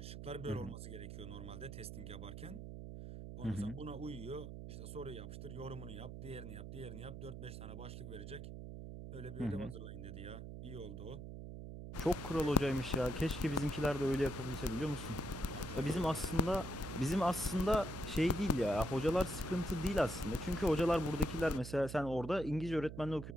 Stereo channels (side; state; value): right; noise; hum, 9 dB below the sound